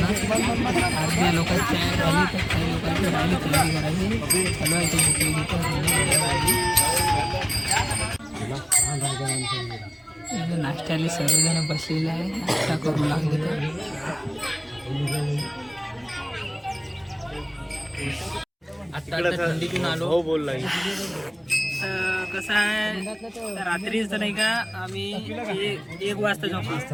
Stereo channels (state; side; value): identical; both; correlation 1.00